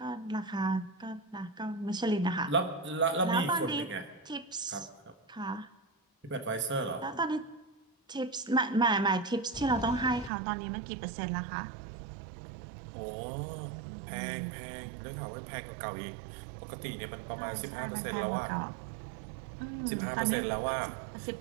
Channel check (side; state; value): left; drops out; at 10.3 s